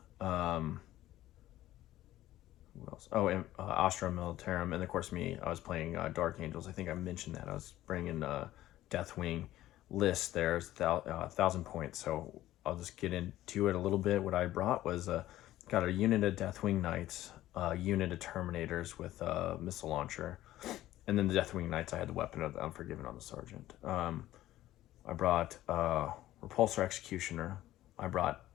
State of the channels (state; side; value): quieter; right; 14.6 dB